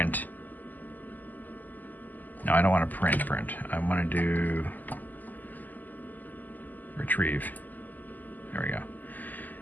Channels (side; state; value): right; late; 0.084 ms